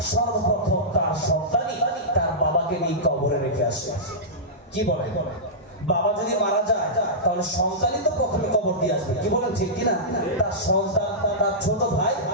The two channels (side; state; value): both; normal; correlation -0.15